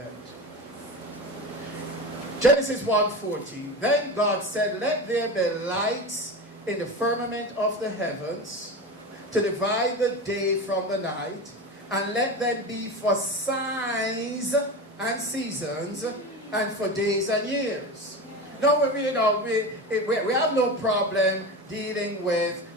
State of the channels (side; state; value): both; normal; correlation 0.25